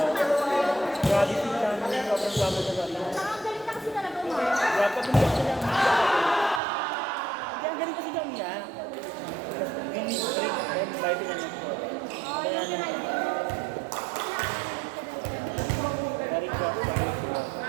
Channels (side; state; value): left; drops out; at 6.6 s